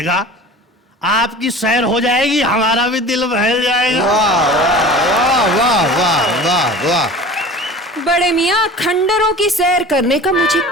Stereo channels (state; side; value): normal; both; correlation 0.40